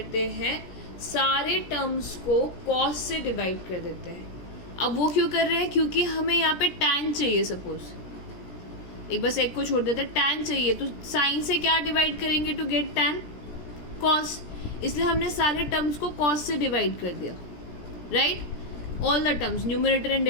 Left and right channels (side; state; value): right; late; 17 ms